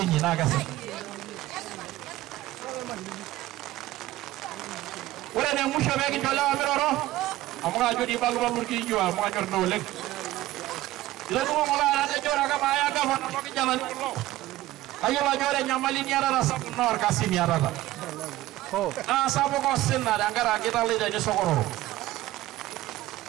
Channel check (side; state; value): left; quieter; 16.3 dB